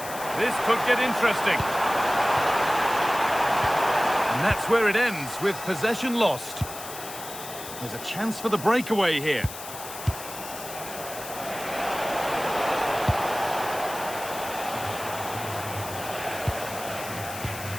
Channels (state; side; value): noise; left; hiss, 11 dB below the sound